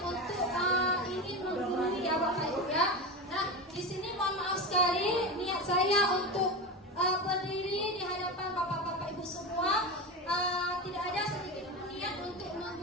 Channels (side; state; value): both; normal; correlation 0.21